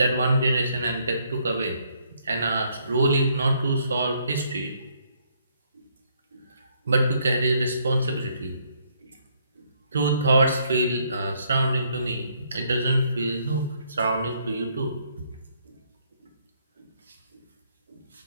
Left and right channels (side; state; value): both; inverted; correlation -0.69